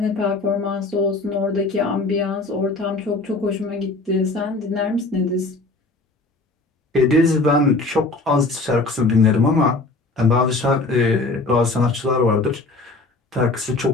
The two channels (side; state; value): right; quieter; 3.3 dB